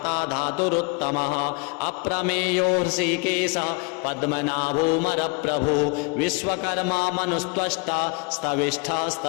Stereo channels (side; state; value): right; quieter; 31.0 dB